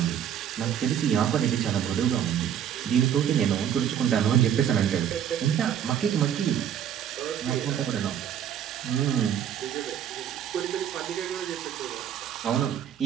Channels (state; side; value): quieter; left; 9.5 dB